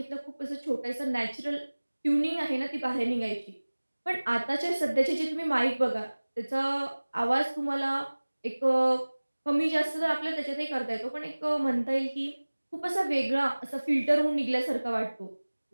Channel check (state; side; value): inverted; both; correlation -1.00